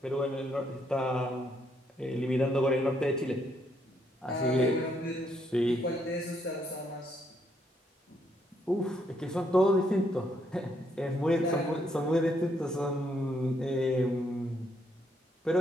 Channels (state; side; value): normal; both; correlation 0.73